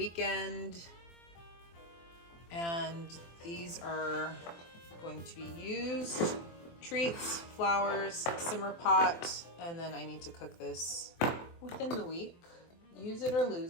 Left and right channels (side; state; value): right; late; 24 ms